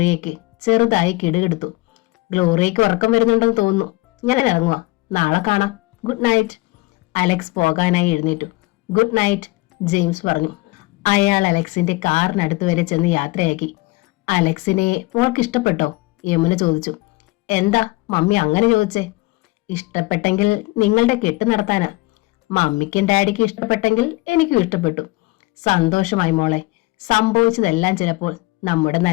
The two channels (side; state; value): right; quieter; 22.0 dB